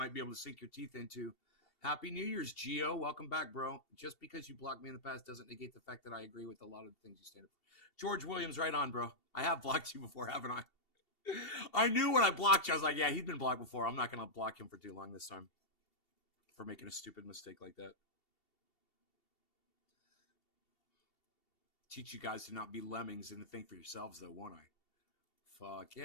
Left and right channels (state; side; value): late; right; 2.7 ms